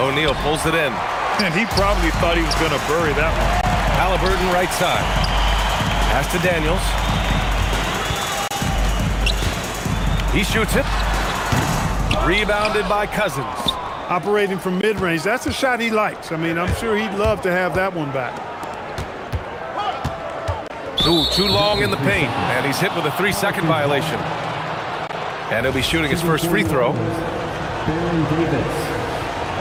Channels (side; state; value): both; identical; correlation 1.00